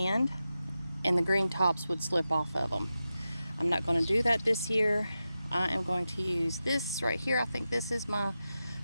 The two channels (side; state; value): both; inverted; correlation -0.92